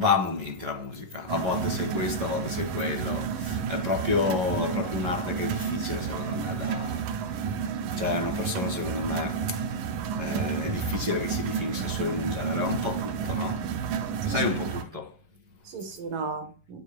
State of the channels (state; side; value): late; left; 11 ms